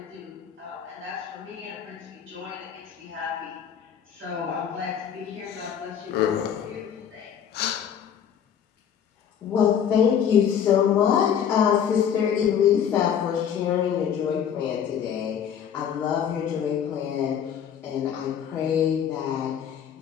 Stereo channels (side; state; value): right; quieter; 8.5 dB